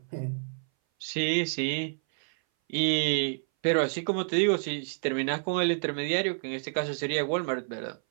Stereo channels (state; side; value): silent; left; 58 dB below the other